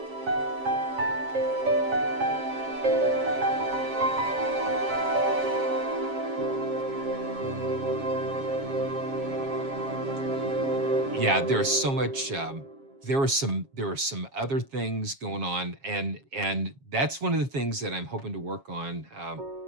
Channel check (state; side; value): late; left; 7.3 ms